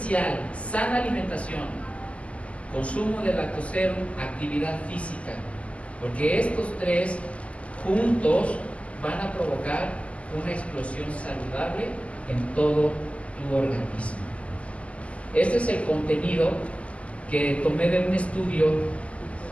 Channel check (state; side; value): late; right; 0.063 ms